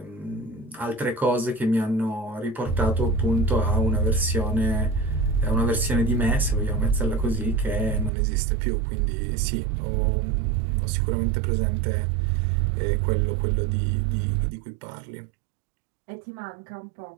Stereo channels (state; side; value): drops out; left; at 8.1 s